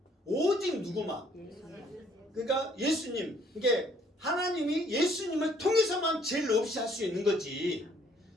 오직 누구만? 그러니까 예수님. 이게 하나님이 예수님을 통해서만 죄를 없이 할 수 있는 거지.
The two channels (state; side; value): normal; both; correlation 0.63